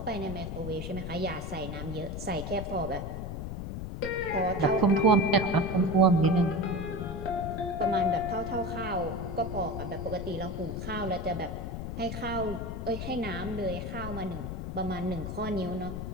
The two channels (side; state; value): left; noise; rumble, 6 dB below the sound